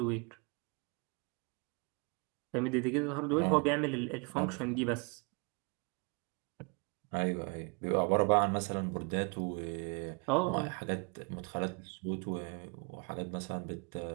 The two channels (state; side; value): quieter; left; 33.6 dB